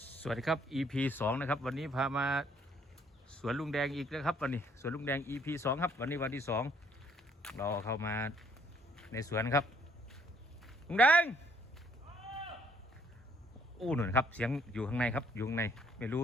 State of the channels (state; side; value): normal; both; correlation 0.65